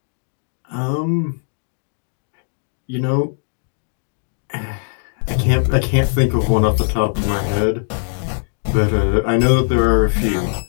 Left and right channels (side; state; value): right; silent; digital silence